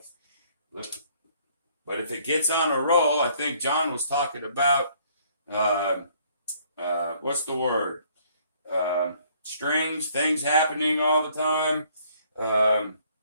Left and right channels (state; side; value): inverted; both; correlation -0.62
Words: But if it gets on a roll, I think John was talking about, what's the word? Strings, things happening all the time.